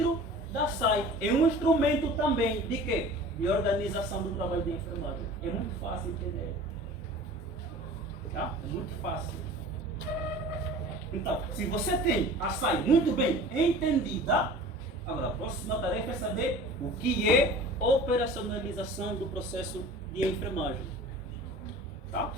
da SAI. É um instrumento também de quê? De organização do trabalho de enfermagem. É muito fácil entender. Tá? É muito fácil. Então, se você tem a SAI muito bem entendida, agora a próxima tarefa é saber o que é operacionalização do processo de enfermagem. Tá?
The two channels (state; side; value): normal; both; correlation 0.41